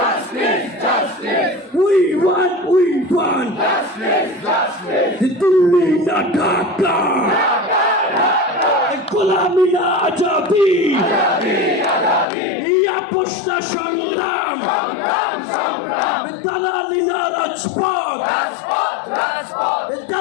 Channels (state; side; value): drops out; right; at 12.2 s